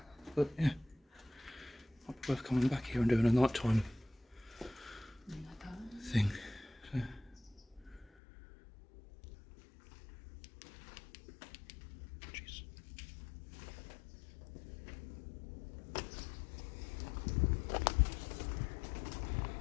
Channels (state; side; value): drops out; right; at 8.1 s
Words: But yeah, might be worth coming back here and doing a nighttime thing. So. Jeez.